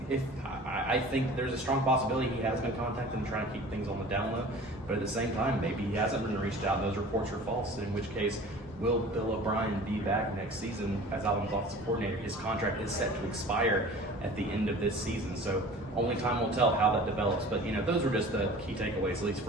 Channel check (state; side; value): normal; both; correlation 0.43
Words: if I think there's a strong possibility he has been contacted and trying to keep things on the down low. But at the same time, maybe he hasn't been reached out and those reports are false, in which case, will Bill O'Brien be back next season as Alabama's offensive coordinator? His contract is set to expire at the end of this season, so only time will tell how that develops. But those were just the key takeaways, at least